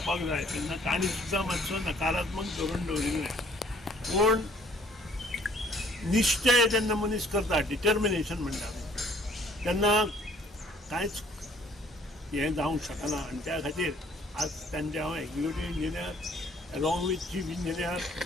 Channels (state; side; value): normal; both; correlation 0.59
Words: जाय तेन्ना तांणी सुद्दां मातसो नकारात्मक धोरण दवरिल्लें। पूण निश्चय जेन्ना मनीस करता, डिटर्मिनेशन म्हणटा तेन्ना कांयच हें जावंक शकना। आनी त्या खातीर आज तांचे हांव executive engineer along with chief engineer